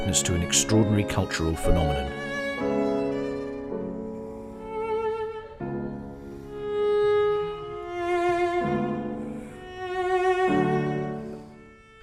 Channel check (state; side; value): identical; both; correlation 1.00